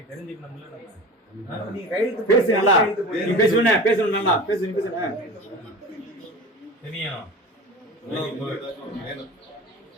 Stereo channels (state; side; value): normal; both; correlation 0.34